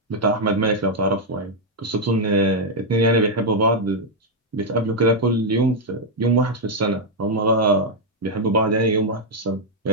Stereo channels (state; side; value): normal; both; correlation 0.00